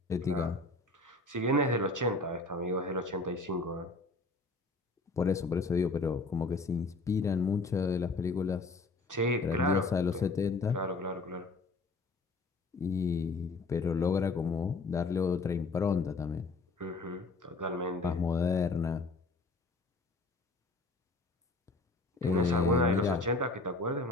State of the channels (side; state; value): right; quieter; 3.4 dB